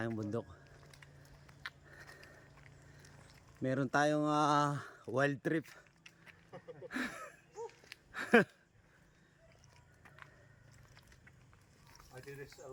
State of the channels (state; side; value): identical; both; correlation 1.00